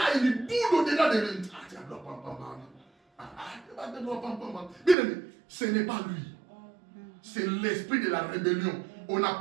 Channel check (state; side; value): drops out; left; at 5.0 s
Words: il boude au-delà de lui. Bien aimé, ce n'est pas lui. C'est l'esprit de la rébellion. On